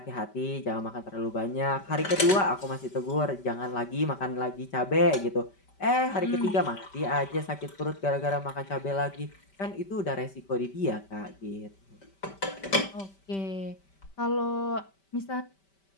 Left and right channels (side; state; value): right; late; 5.2 ms